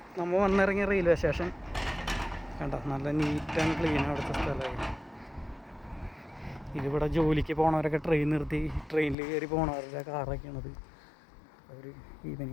നമ്മൾ വന്നിറങ്ങിയ റെയിൽവേ സ്റ്റേഷൻ. കണ്ട, നല്ല നീറ്റ് ആൻഡ് ക്ലീൻ അവിടുത്തെ സ്ഥലമായി. ഇതിവിടെ ജോലിക്ക് പോണവരൊക്കെ ട്രെയിൻ നിർത്തി ട്രെയിനിൽ കയറി പോണവരുടെ കാറൊക്കെയാണത്. അവർ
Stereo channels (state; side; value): drops out; right; at 9.2 s